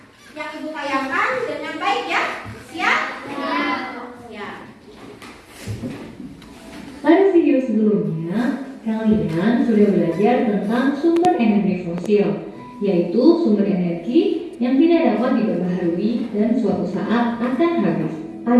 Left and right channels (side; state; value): both; identical; correlation 1.00